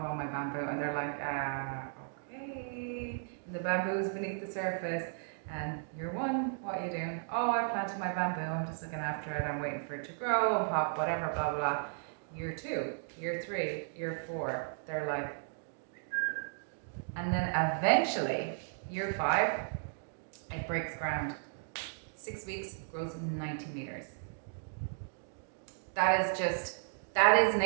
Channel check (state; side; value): silent; left; digital silence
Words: my bamboo. And they're like, okay. And the bamboo's beneath the surface, and year one, what are you doing? Oh, I planted my bamboo, I'm just looking after it, I'm waiting for it to grow and pop, whatever, blah, blah, blah. Year 2, year 3, year 4, they're like, and then eventually, year 5, it breaks ground. 6 weeks, grows 90 meters. That is